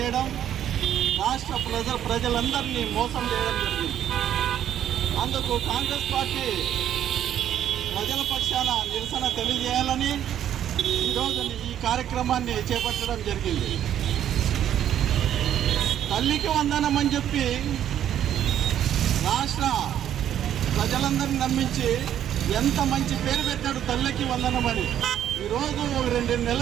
రాష్ట్ర ప్రజలందరినీ మోసం చేయడం జరిగింది. అందుకు కాంగ్రెస్ పార్టీ ప్రజల పక్షాన నిరసన తెలియజేయాలని ఈరోజు ఈ కార్యక్రమాన్ని చేపట్టడం జరిగింది. తల్లికి వందనం అని చెప్పి రాష్ట్ర ప్రజలందరినీ నమ్మించి ఎంత మంచి పేరు పెట్టాడు తల్లికి వందనం అని. ఈరోజు 2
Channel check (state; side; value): quieter; left; 10.6 dB